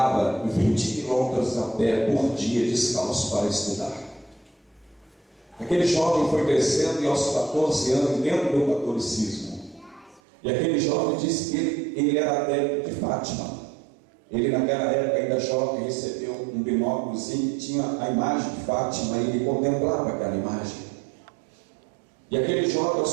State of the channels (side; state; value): left; drops out; at 10.2 s